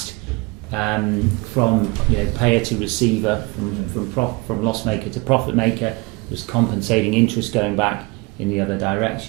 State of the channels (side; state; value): left; quieter; 25.8 dB